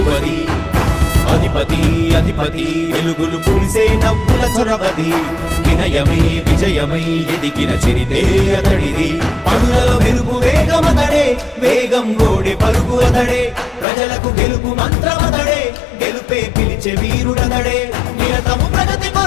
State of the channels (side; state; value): right; drops out; at 13.9 s